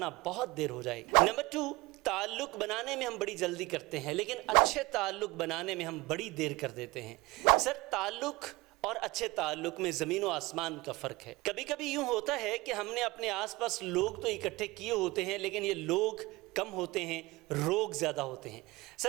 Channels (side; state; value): left; quieter; 22.0 dB